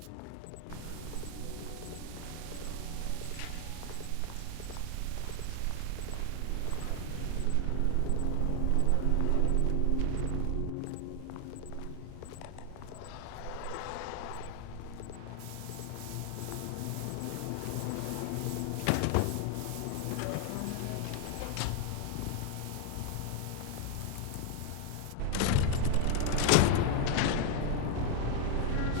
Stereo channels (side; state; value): both; different; correlation 0.01